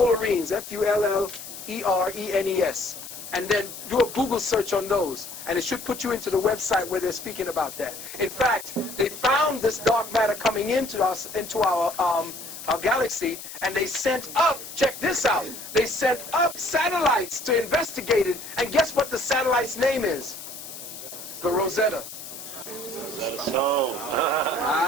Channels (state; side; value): noise; left; hiss, 12 dB below the sound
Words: Fullerenes. And then do a Google search on those, and it should put you into the website where they're speaking about that. In fact, they found this dark matter coming into our galaxy, and they sent up, check this out, they sent up satellites to investigate it, and guess what the satellite's name is? The Rosetta.